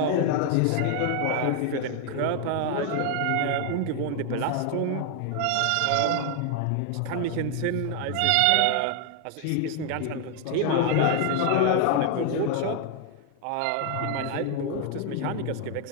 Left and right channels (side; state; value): both; different; correlation 0.00